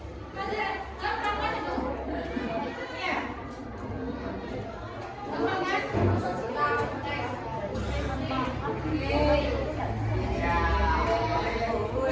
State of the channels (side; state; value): both; identical; correlation 1.00